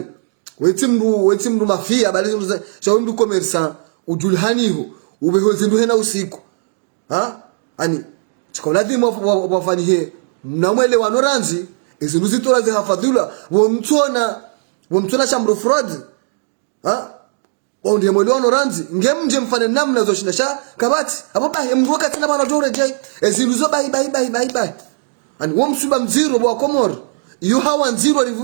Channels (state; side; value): silent; left; digital silence